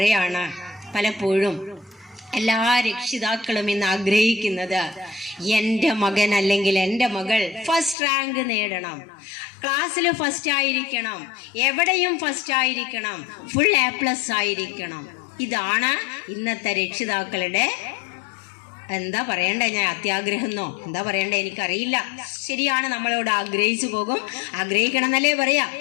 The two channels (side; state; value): right; drops out; at 8.0 s